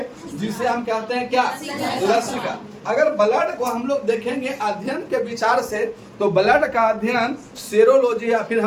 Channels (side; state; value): both; identical; correlation 1.00